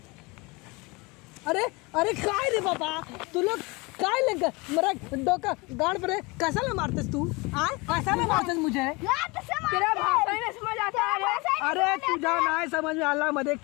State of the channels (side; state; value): right; quieter; 26.0 dB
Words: अरे अरे काय रे बाबा तू लोग काय लग मेरा डोका गांड पर कैसा ले मारतेस तू? कैसा ले मारतेस मुझे? तेरा भाषा ही नहीं समझ आता है। अरे तू जा ना समझ में आला मध्ये